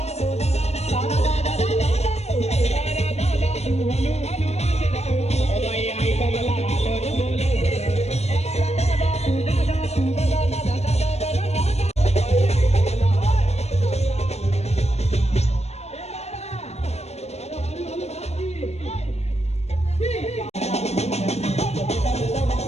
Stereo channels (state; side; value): late; right; 0.31 ms